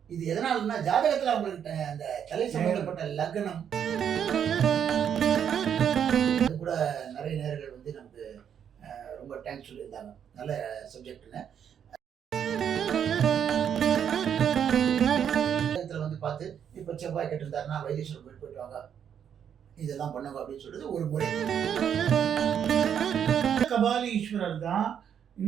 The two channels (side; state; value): left; quieter; 8.5 dB